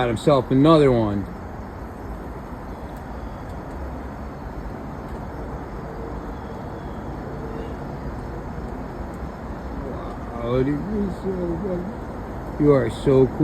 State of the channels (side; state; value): both; identical; correlation 1.00